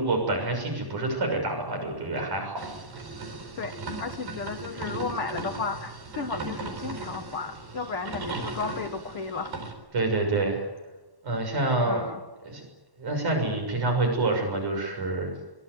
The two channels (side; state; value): left; late; 1.1 ms